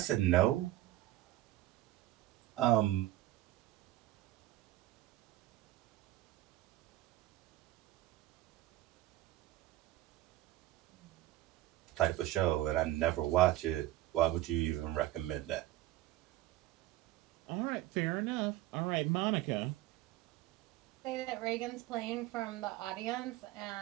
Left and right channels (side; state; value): left; quieter; 15.5 dB